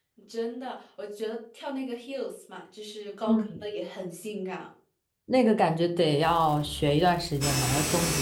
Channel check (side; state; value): both; identical; correlation 1.00